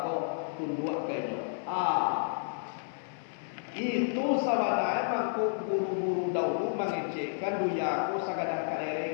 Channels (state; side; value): silent; right; 57 dB below the other